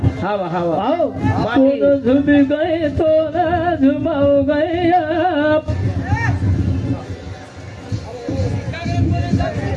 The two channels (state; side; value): identical; both; correlation 1.00